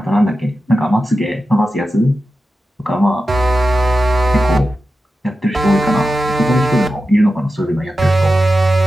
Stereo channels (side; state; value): both; normal; correlation 0.92